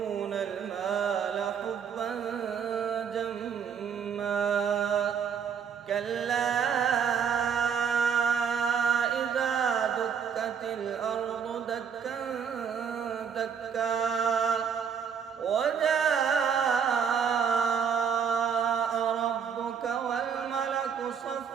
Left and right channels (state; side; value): quieter; left; 7.2 dB